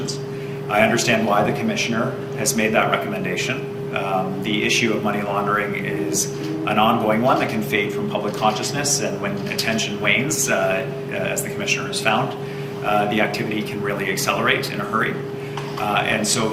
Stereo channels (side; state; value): both; identical; correlation 1.00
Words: I understand why the Commissioner has made that recommendation. The issue of money laundering is an ongoing one that can fade from public consciousness, and when attention wanes, as the Commissioner has found, the activity can really accelerate in a hurry. And so